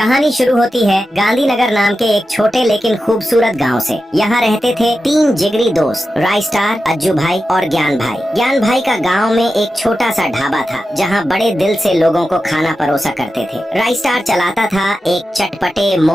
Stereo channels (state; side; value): normal; both; correlation 0.91